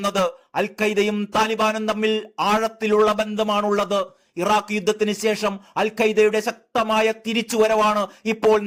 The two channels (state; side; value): identical; both; correlation 1.00